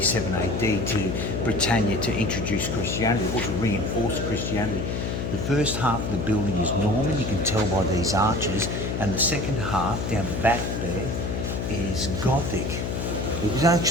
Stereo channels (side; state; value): left; noise; hum, 2 dB below the sound